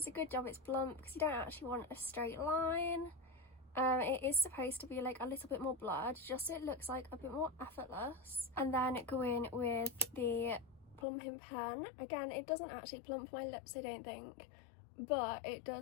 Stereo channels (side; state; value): right; drops out; at 11.1 s